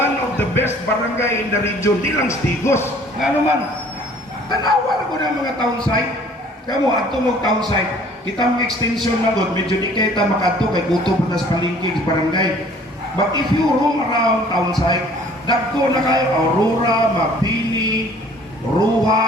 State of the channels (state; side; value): normal; both; correlation 0.54